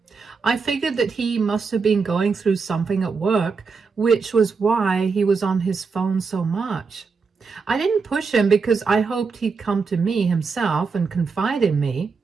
I figured that he must have been going through something at work, which was why he was on his phone so much. I didn't push him because I hoped he'd come to me himself and confide in me.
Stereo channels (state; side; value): quieter; left; 5.0 dB